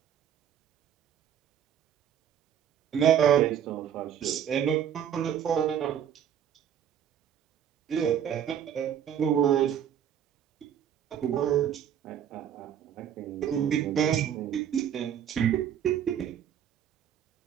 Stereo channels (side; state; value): left; quieter; 9.3 dB